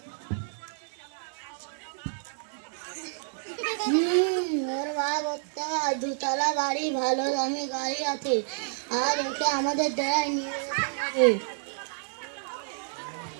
ওর বাপ ওর দুতলা বাড়ি, ভালো দামি গাড়ি আছে, আর ওকে আমাদের ডেরায় নিয়ে যেতে হবে।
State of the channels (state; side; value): silent; left; digital silence